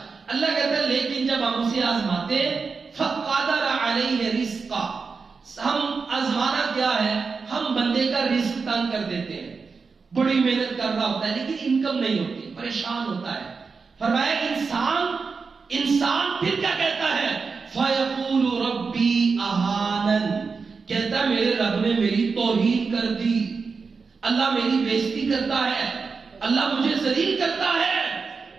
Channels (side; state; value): left; quieter; 4.9 dB